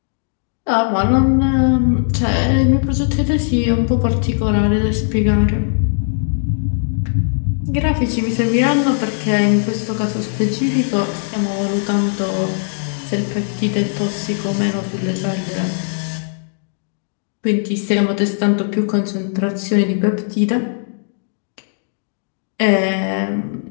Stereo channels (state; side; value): silent; right; digital silence